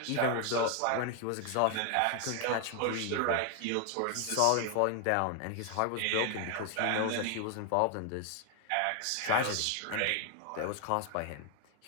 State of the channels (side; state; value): both; different; correlation 0.00